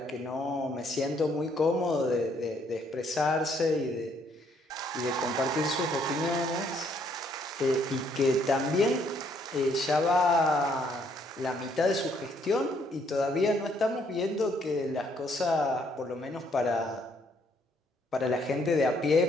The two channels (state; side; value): normal; both; correlation 0.68